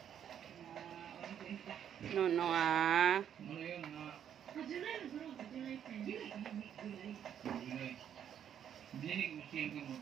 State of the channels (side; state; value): left; quieter; 9.3 dB